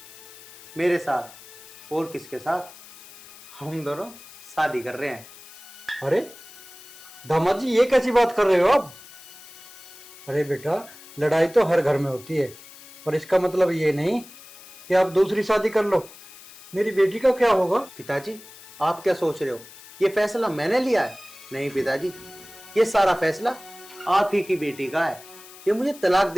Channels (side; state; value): left; noise; hiss, 19 dB below the sound